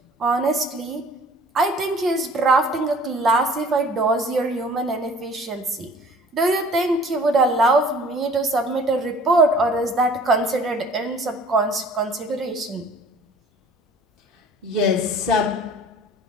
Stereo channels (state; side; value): normal; both; correlation 0.50